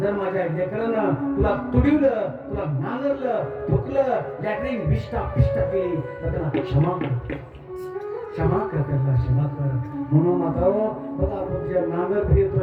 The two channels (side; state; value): both; identical; correlation 1.00